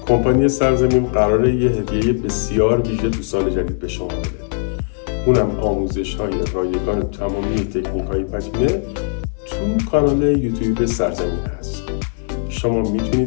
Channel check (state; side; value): silent; right; 58 dB below the other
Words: کمپانی سرزمین قراره یه هدیه بسیار ویژه تو سال جدید به شما بده. اونم آموزش‌های رایگان تمامی تکنیک‌های پتینه تو کانال یوتیوب سرزمین هست. شما